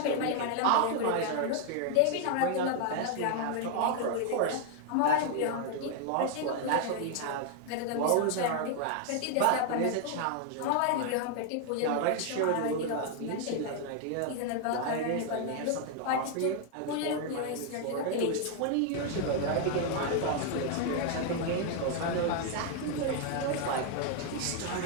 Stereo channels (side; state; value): both; different; correlation 0.00